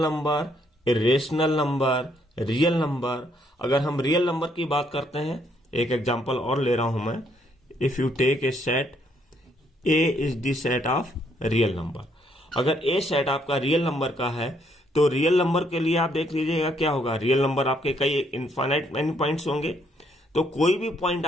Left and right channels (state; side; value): normal; both; correlation 0.70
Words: irrational number, real number. अगर हम रियल नंबर की बात करते हैं, एक एग्जांपल और ले रहा हूं मैं। If you take a set, A is the set of real number. अगर ए सेट आपका रियल नंबर का है, तो रियल नंबर के लिए आप देख लीजिएगा क्या होगा। रियल नंबर आपके कई इनफाइनाइट मैनी पॉइंट्स होंगे, तो कोई भी पॉइंट